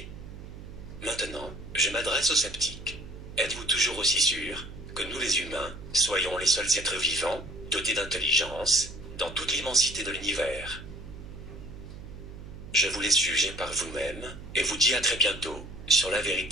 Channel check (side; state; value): right; noise; hum, 13 dB below the sound